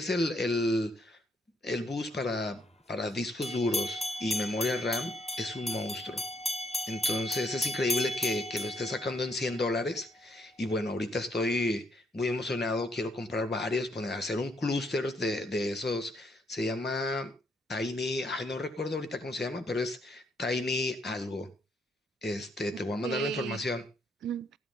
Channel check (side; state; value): both; normal; correlation 0.72